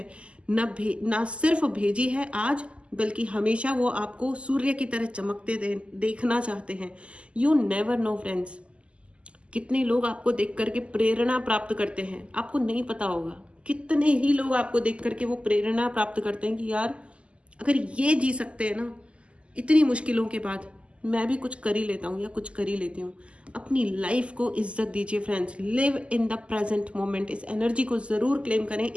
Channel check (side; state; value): left; late; 0.055 ms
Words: ना सिर्फ भेजी है आज, बल्कि हमेशा वो आपको सूर्य की तरह चमकते देखना चाहते हैं। यू नेवर नो फ्रेंड्स, कितने लोग आपको देख करके प्रेरणा प्राप्त करते हैं, आपको नहीं पता होगा। कितने ही लोग आपको देख करके वो प्रेरणा प्राप्त करते हैं कि यार, अगर ये जी सकते हैं ना इतनी मुश्किलों के बाद, मैं भी कुछ कर ही लेता हूँ या कुछ कर ही लेती हूँ। अपनी लाइफ को इज्जत दीजिए friends, live in the present moment. इस एनर्जी को ज़रूर क्लेम करें,